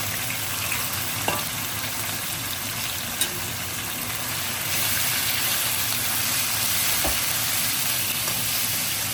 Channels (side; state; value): both; identical; correlation 1.00